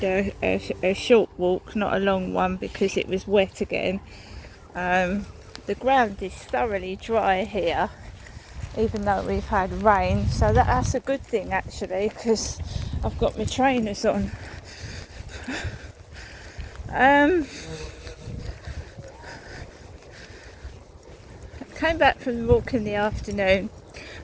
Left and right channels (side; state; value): both; identical; correlation 1.00